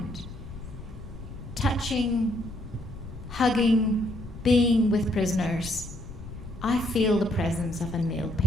touching, hugging, being with prisoners, I feel the presence of a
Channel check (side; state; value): left; noise; rumble, 12 dB below the sound